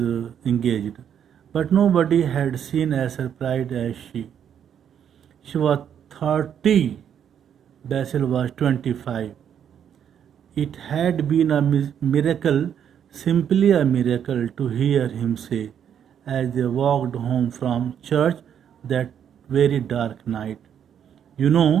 engaged. But nobody had seen as surprised as she. She was 30, Basil was 25. It had been a miracle, simply a miracle, to hear him say, as they walked home from church that very dark night, "You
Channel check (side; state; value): left; quieter; 8.8 dB